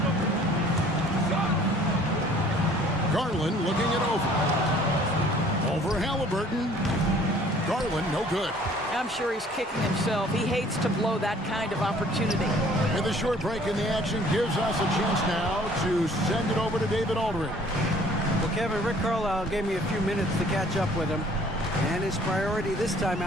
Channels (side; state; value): both; normal; correlation 0.55